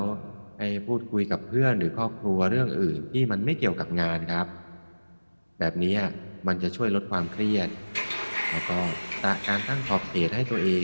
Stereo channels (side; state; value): both; inverted; correlation -1.00